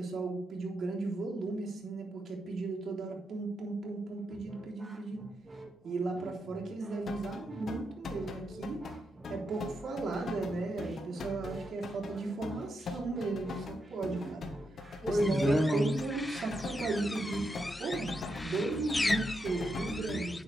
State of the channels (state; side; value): normal; both; correlation 0.83